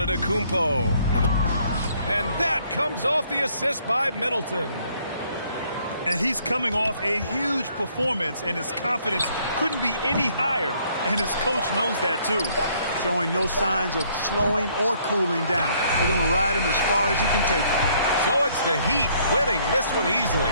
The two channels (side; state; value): both; inverted; correlation -0.65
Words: And that comes off the assist by Middleton. And he's coming off a huge performance, and his confidence couldn't be any higher. And his coach knows that, too. Showing no signs of slowing or cooling down. They're going to ride him as far as he can take him. So it's the Heat winning this one easily.